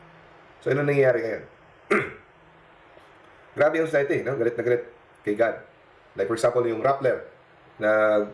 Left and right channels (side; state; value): both; identical; correlation 1.00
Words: So, ano nangyayari ngayon? Grabe yung society, no? Galit na galit kay God. Like for example, yung Rappler na